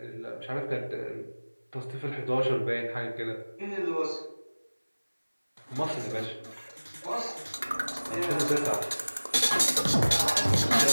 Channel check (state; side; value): inverted; both; correlation -1.00